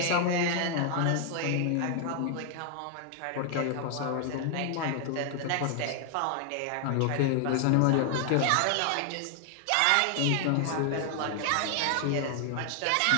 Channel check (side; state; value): both; different; correlation 0.00